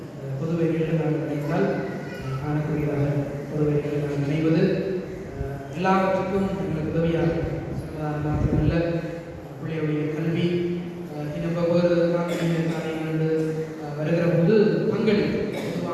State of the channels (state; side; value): identical; both; correlation 1.00